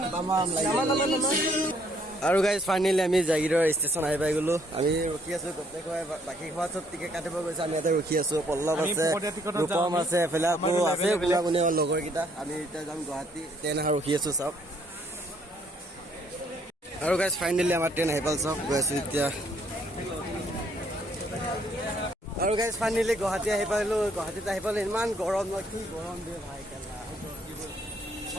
আৰু গাইছ ফাইনেলি আমি জাগিৰৰ ষ্টেচন আহি পাই গলো আমি ৰখি আছো গোটেই বাকী খোৱা চব টিকেট কাটিব গৈছে আমি ইয়াতে ৰখি আছো পল্লৱ আছে ৰূপম আছে এফালে আকৌ আছে কোনে লগৰ কেইটা আমি এতিয়া যাম গুৱাহাটী ট্ৰেইন অহা ৰখি আছো চব আৰু গাইছ ফাইনেলি আমাৰ ট্ৰেইন আহি পাল চব গৈ আছো এতিয়া আৰু গাইছ ফাইনেলি গুৱাহাটী আহি পালো গুৱাহাটীত আহি পালো ইমান গৰম ন কি গৰম দিয়ে ভাই কেলা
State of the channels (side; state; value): both; normal; correlation 0.66